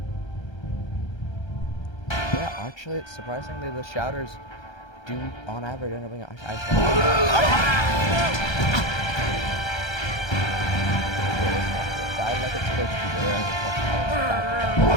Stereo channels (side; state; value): right; late; 1.3 ms